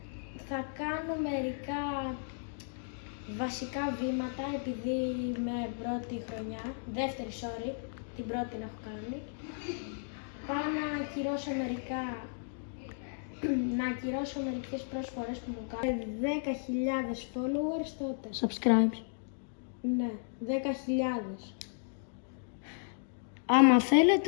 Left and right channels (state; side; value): silent; right; digital silence